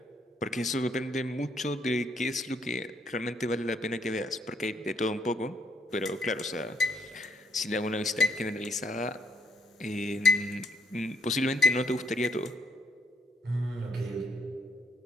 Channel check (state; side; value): normal; both; correlation 0.72